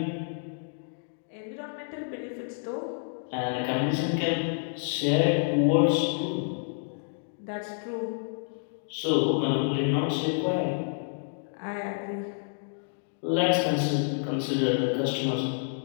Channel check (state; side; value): silent; right; digital silence